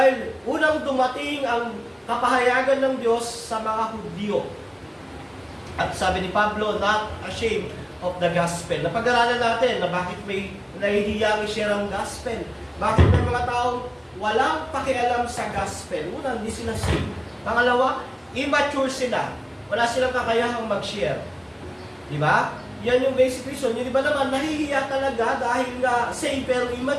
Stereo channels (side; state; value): both; identical; correlation 1.00